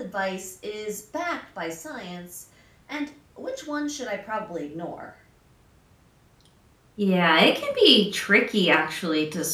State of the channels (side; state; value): both; identical; correlation 1.00